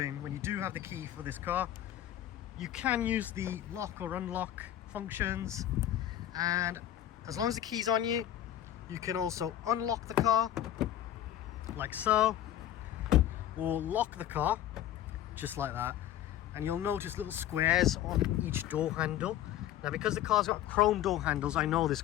when you do have the key for this car, you can use the lock or unlock functions, and as long as the key's on you, you can also unlock the car like so, or lock the car just like that. And you'll notice little squares on each door handle. Now because the car's got chrome door handles, I know this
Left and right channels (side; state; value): right; quieter; 12.0 dB